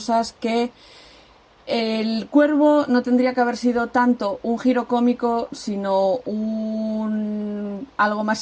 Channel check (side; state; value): both; identical; correlation 1.00